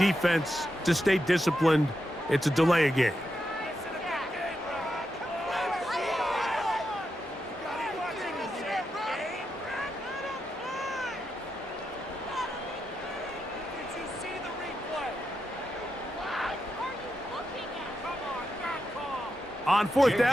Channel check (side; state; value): both; normal; correlation 0.86